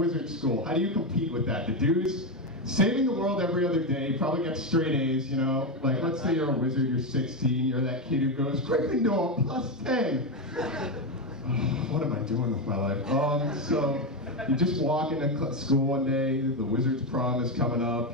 school. How do you compete with that? The dude's saving the world every other day, probably gets straight A's, you know? Like, let's say you're a wizard, you're 16, you're that kid who goes, Gryffindor, +10! What am I doing with my life? So, you just walk into school one day, the wizard's prom is coming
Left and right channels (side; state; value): both; normal; correlation 0.10